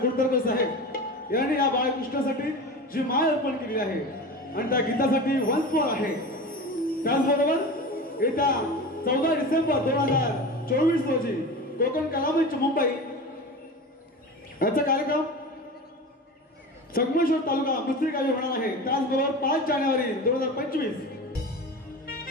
कुर्ताडकर साहेब यांनी या बाळकृष्णासाठी जी माळ अर्पण केली आहे आणि त्या गीतासाठी वंशमोर आहे. त्याचबरोबर येत्या 14 डिसेंबर 2024 रोजी कोकण कलामंच मुंबई याचा कार्यक्रम संगमेश्वर तालुका मुस्त्री गावी होणार आहे. त्याचबरोबर 5 जानेवारी 2025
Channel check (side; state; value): both; normal; correlation 0.30